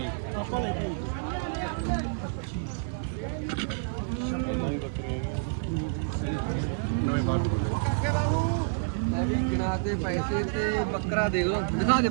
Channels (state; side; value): silent; left; 59 dB below the other